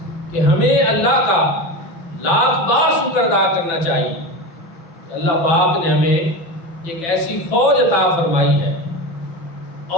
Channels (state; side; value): late; right; 6.0 ms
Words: کہ ہمیں اللہ کا لاکھ بار شکر ادا کرنا چاہیے کہ اللہ پاک نے ہمیں ایک ایسی فوج عطا فرمائی ہے،